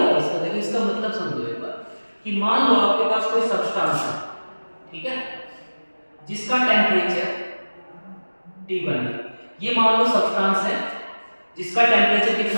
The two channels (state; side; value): inverted; both; correlation -1.00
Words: इसका? देखो इसका मतलब समझो एक बार कि मान लो आपके पास कोई सब्सटेंस है, ठीक है, जिसका टेम्परेचर T1 है। ये मान लो सब्सटेंस है जिसका टेम्परेचर